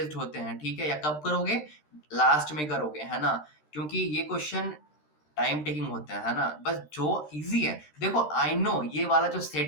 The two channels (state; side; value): late; right; 13 ms